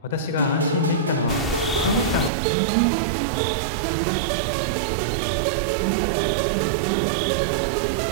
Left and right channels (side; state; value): left; drops out; at 2.3 s